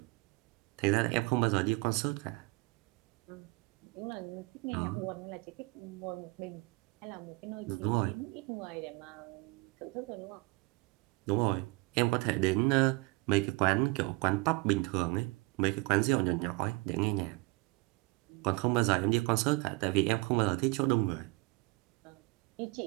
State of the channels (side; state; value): left; quieter; 25.4 dB